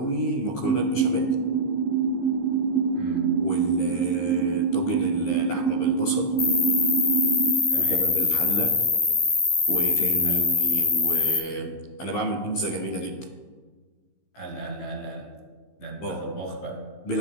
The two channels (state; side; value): late; right; 15 ms